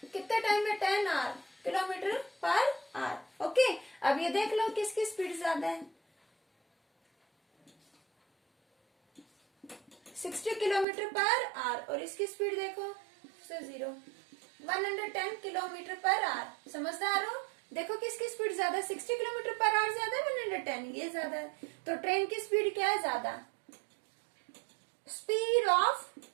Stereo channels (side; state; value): left; drops out; at 10.9 s